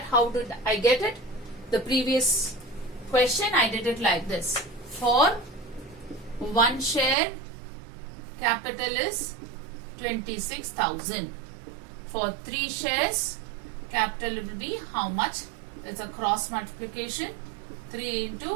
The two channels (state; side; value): drops out; left; at 7.2 s